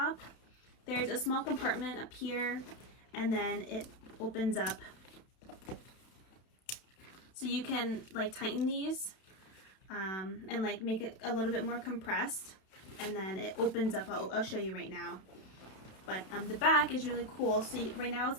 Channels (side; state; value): right; late; 31 ms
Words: There's a small compartment up here and then it opens up, so you can like tighten these and like make it a little bit more compressed, and then it opens up. I'll show you right now. But the back is really cool. So right now it's